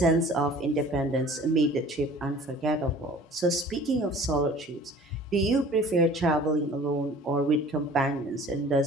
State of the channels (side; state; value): both; normal; correlation 0.47